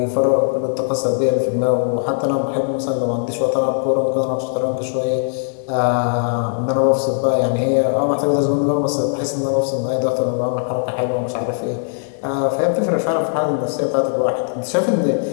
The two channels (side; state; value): right; silent; digital silence